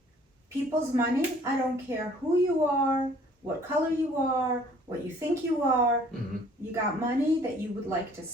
people's money. I don't care who you are, what color you are, what you think you are. Mm-hmm. You got money that you would like to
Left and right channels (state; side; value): normal; both; correlation 0.56